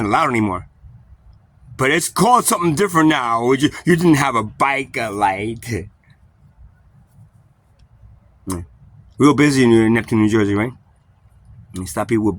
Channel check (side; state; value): both; identical; correlation 1.00